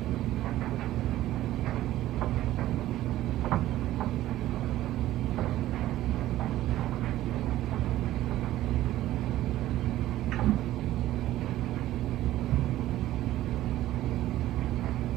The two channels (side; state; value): left; quieter; 14.5 dB